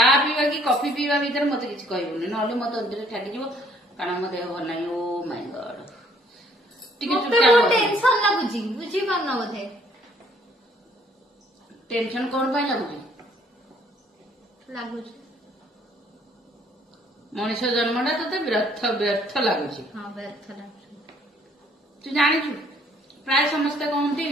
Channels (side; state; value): both; normal; correlation 0.62